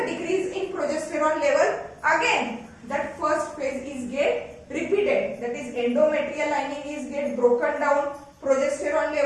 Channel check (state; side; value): identical; both; correlation 1.00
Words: decrease in progesterone level. Again, that first phase is get repeated. That is, endometrial lining is get broken down, progesterone